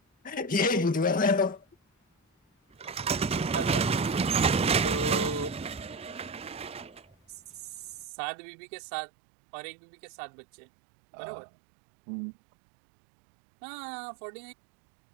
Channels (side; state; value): left; drops out; at 8.1 s